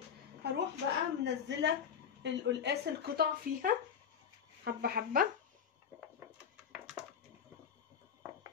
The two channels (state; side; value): quieter; right; 7.5 dB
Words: هروح بقى منزله القلقاس القطع فيها حبه حبه.